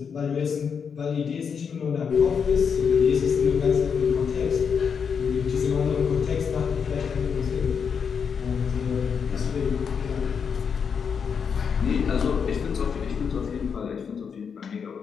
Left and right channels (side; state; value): right; quieter; 6.5 dB